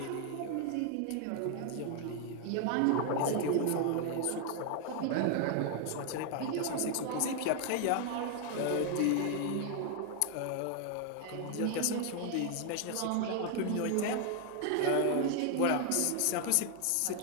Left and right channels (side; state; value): both; different; correlation 0.00